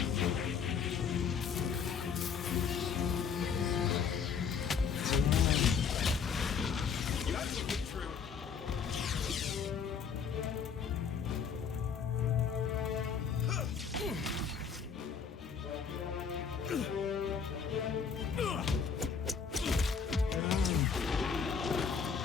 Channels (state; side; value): quieter; right; 6.3 dB